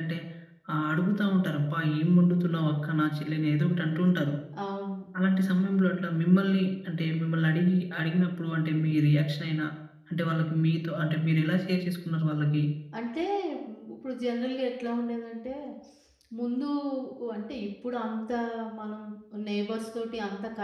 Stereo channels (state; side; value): identical; both; correlation 1.00